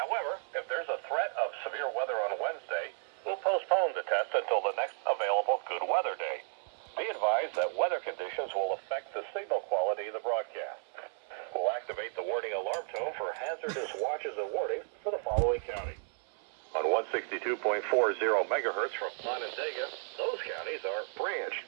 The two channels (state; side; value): silent; left; 56 dB below the other